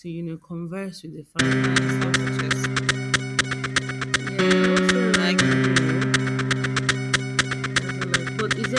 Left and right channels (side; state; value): both; identical; correlation 1.00